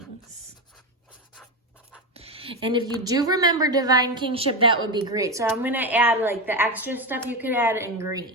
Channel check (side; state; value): both; normal; correlation 0.15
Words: And if you do remember divine kingship, that would be great. So I'm going to add like the extra stuff you could add in